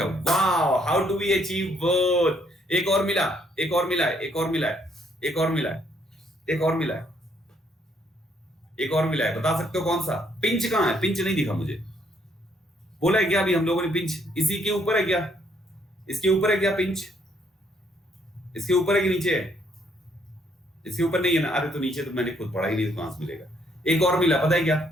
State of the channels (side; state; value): both; normal; correlation 0.69